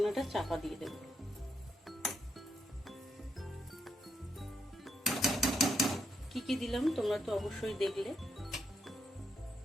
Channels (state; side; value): normal; both; correlation 0.79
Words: চাপা দিয়ে দেব। কি কি দিলাম তোমরা তো অবশ্যই দেখলে।